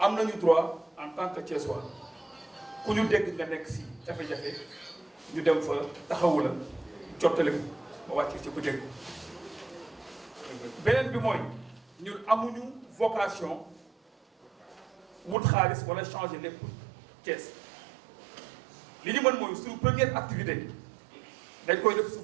am nañu droit en tant que Thiessois ku ñu dégg nga nekk si jafe-jafe ñu dem fa taxawu la jottali ko ba wàcc ci bu dégg beneen bi mooy ñun amuñu vocation wut xaalis wala changer lépp Thiès li ñu mën mooy suñu première activité dañ koy def sous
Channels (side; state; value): left; drops out; at 15.4 s